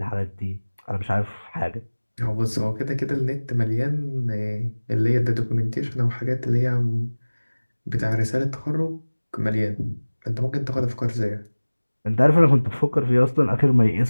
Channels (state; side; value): inverted; both; correlation -1.00